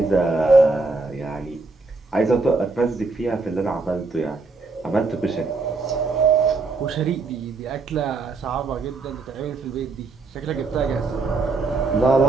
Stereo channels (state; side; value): quieter; left; 3.8 dB